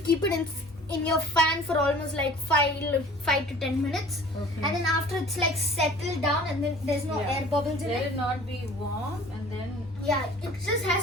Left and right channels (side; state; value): both; normal; correlation 0.48